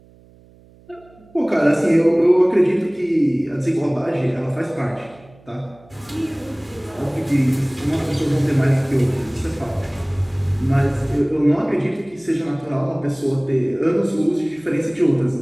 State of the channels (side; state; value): right; noise; hum, 27 dB below the sound